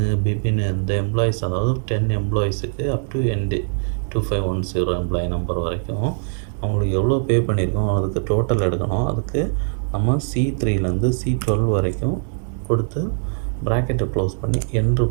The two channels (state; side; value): silent; left; digital silence